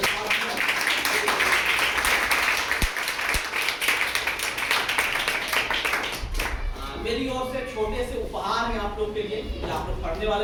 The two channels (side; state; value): both; identical; correlation 1.00